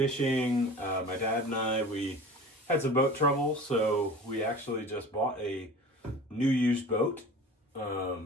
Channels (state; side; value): normal; both; correlation 0.39